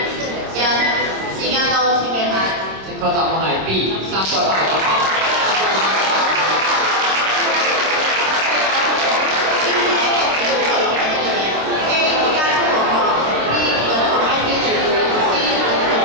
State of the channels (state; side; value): late; left; 26 ms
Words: 1，時間到，請舉牌。正確答案係 B， 3個牌。